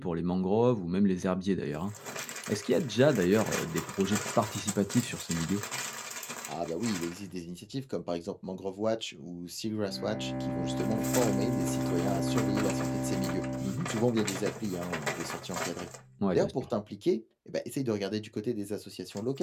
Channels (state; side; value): identical; both; correlation 1.00